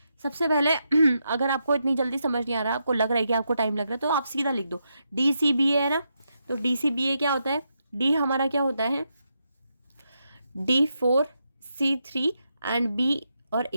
सबसे पहले अगर आपको इतनी जल्दी समझ नहीं आ रहा, आपको लग रहा है कि आपको टाइम लग रहा है, तो आप सीधा लिख दो DCBA है ना। तो DCBA क्या होता है? D हमारा क्या होता है? D4 C3 एंड B और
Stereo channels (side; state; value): both; inverted; correlation -0.83